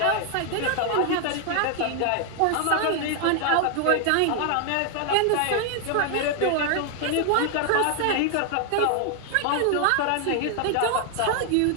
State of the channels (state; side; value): different; both; correlation 0.00